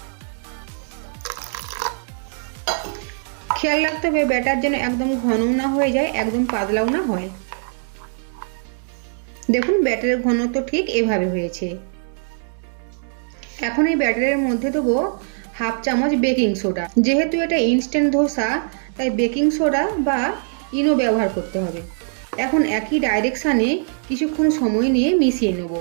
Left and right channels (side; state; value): left; silent; digital silence